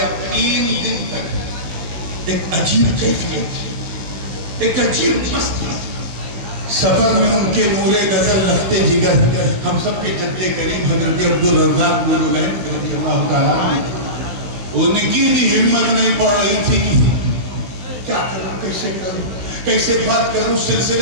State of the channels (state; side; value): late; left; 16 ms